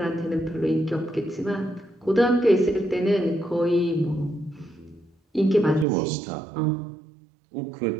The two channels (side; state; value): left; drops out; at 5.9 s